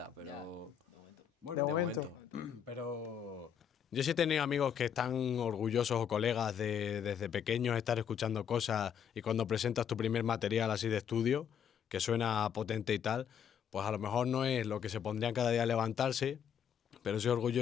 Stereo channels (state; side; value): quieter; right; 8.3 dB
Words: pero... Bueno, de momento. Pero yo sí he tenido amigos que están orgullosos o colegas de desde pequeños estar escuchando cosas y cuando presentas tu primer material así de estudio, que suena potente y tal, pues a lo mejor no es lo que se pondrían cada día a levantarse, pero soy